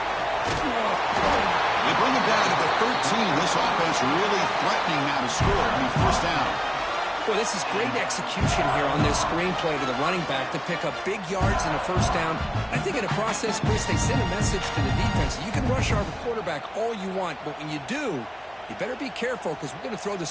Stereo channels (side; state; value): both; identical; correlation 1.00